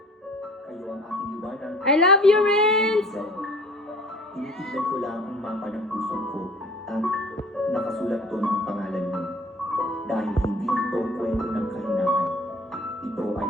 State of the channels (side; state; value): both; normal; correlation 0.49